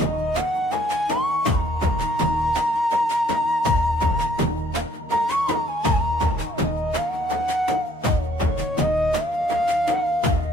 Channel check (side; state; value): both; normal; correlation 0.62